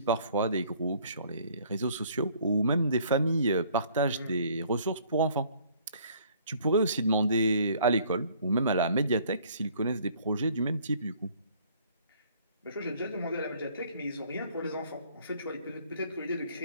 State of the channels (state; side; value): inverted; both; correlation -0.58